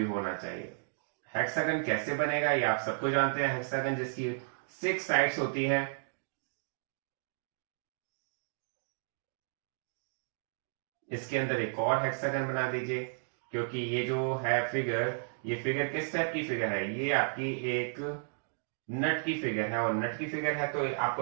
होना चाहिए। हेक्सागन कैसे बनेगा ये आप सबको जानते हैं, हेक्सागन जिसकी 6 साइड्स होती हैं। इसके अंदर एक और हेक्सागन बना दीजिए, क्योंकि ये जो है फिगर, ये फिगर किस टाइप की फिगर है, ये आपकी एक नट की फिगर है, और नट की फिगर है तो आपको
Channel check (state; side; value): silent; left; digital silence